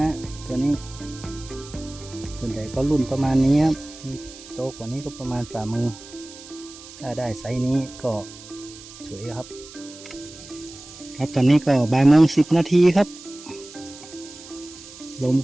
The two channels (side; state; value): right; noise; hiss, 17 dB below the sound